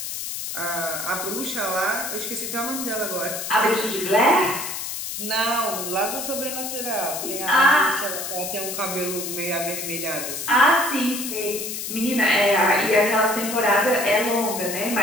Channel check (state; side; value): noise; left; hiss, 5 dB below the sound